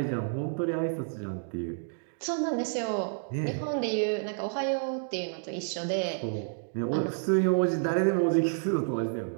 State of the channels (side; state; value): left; silent; digital silence